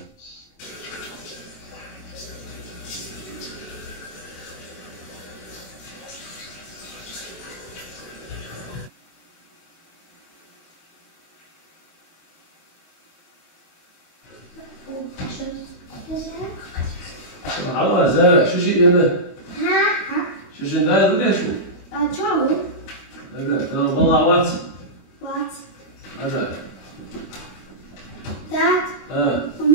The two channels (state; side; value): late; right; 22 ms